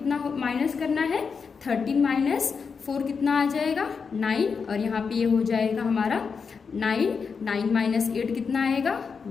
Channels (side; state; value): right; quieter; 5.6 dB